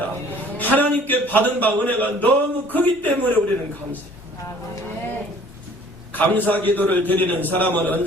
하나님께 받은 바 은혜가 너무 크기 때문에 우리는 감사해요. 감사 기도를 드리는 사람은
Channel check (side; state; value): both; normal; correlation 0.53